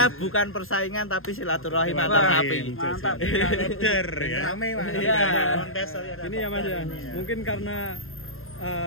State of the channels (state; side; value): late; right; 0.60 ms